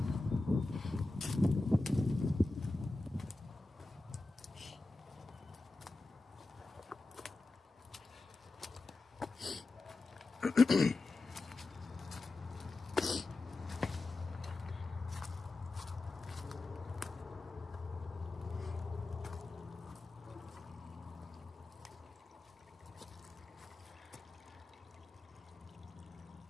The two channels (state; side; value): quieter; right; 3.1 dB